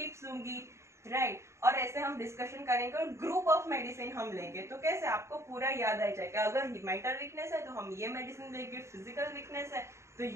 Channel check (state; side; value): late; left; 0.14 ms